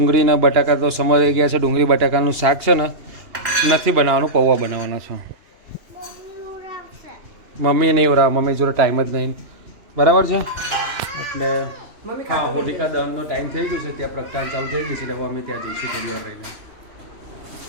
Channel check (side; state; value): left; late; 2.9 ms